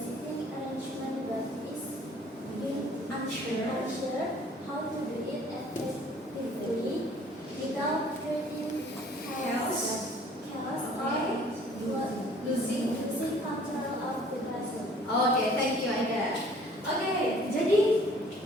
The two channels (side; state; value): both; normal; correlation 0.55